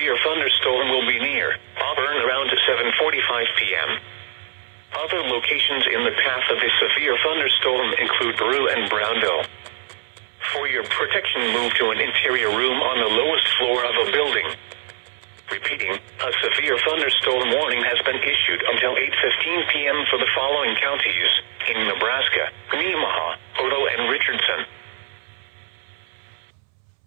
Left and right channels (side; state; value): left; silent; 64 dB below the other